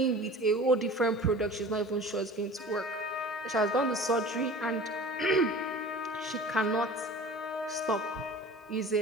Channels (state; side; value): normal; both; correlation 0.41